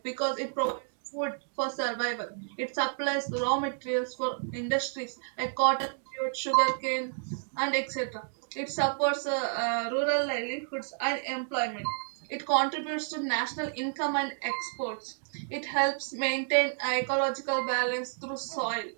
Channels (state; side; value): silent; left; digital silence